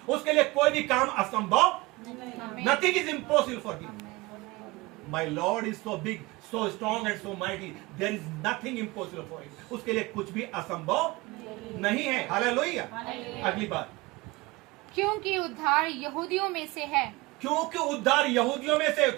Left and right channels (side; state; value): left; quieter; 22.4 dB